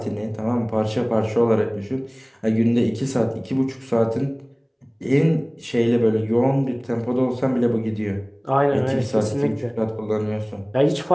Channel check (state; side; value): identical; both; correlation 1.00